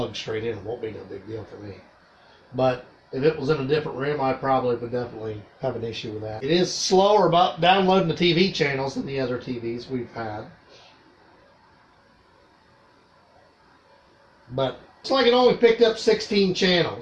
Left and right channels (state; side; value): identical; both; correlation 1.00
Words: straight in. It won't be no big deal for me. But if it was in a different room, I probably would definitely have an issue with that. It is slower about downloading the TV channels than the other TVs we've had. But it's like it only picked up 16